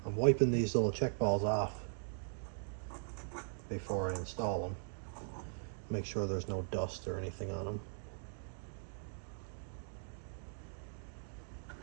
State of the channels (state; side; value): silent; left; digital silence